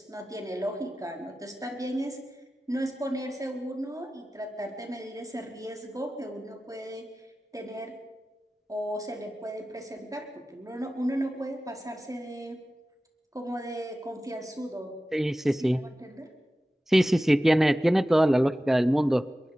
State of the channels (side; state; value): both; normal; correlation 0.95